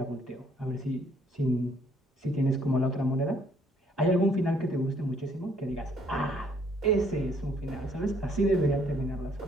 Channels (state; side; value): normal; both; correlation 0.65